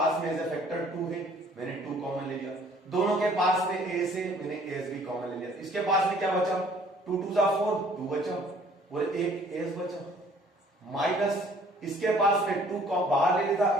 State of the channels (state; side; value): normal; both; correlation 0.57